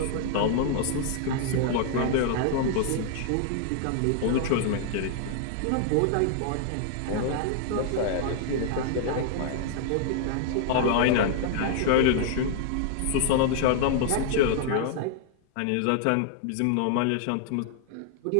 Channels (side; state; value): both; different; correlation -0.01